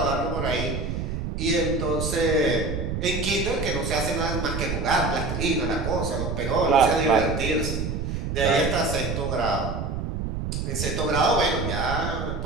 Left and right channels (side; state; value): right; noise; rumble, 3 dB below the sound